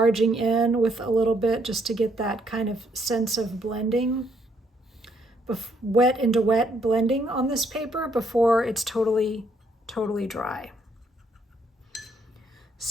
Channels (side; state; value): both; normal; correlation 0.71